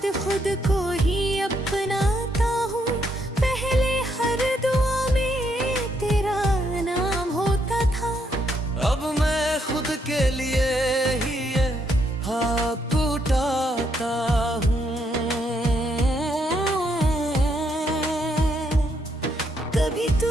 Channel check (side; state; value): both; normal; correlation 0.75